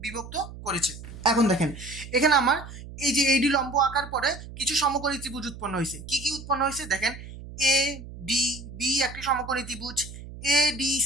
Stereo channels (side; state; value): right; noise; hum, 13 dB below the sound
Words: বিভক্ত করেছে। এখন দেখেন এখানে আমার এই যে এডি লম্ব আঁকার পরে কিছু সমকোণী ত্রিভুজ উৎপন্ন হয়েছে। কি কি উৎপন্ন হয়েছে দেখেন, এ ডি বি একটি সমকোণী ত্রিভুজ, এ ডি